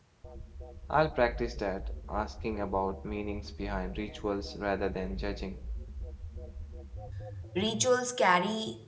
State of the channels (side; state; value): both; identical; correlation 1.00